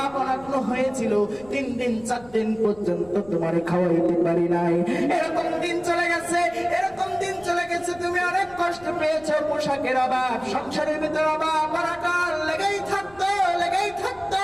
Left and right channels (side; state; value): left; noise; rumble, 24 dB below the sound